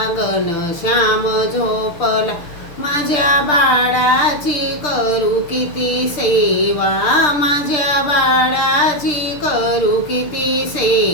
घनश्याम झोपला, माझ्या बाळाची करू किती सेवा, माझ्या बाळाची करू किती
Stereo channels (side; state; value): right; late; 6.7 ms